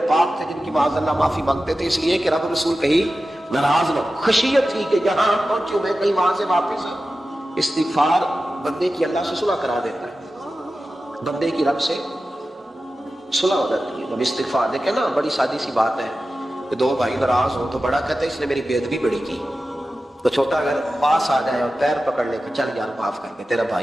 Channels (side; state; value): both; normal; correlation 0.94